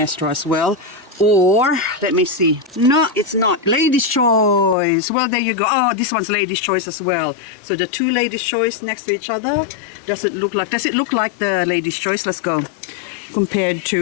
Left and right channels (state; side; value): drops out; right; at 4.8 s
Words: as well. Or, let me see. No, it's not. Ladies' Choice. Well, there you go. Oh, this one's Ladies' Choice as well. So the two Ladies' Choice next to each other. Does it look like the Ladies' Choice? Let's go. Compared